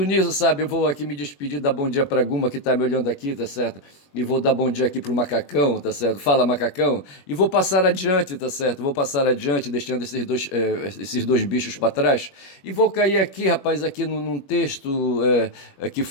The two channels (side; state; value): right; late; 21 ms